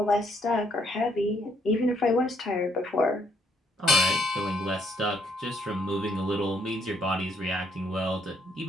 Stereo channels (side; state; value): both; normal; correlation 0.69